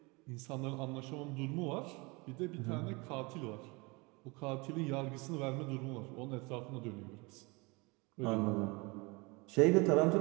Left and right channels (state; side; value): quieter; left; 26.8 dB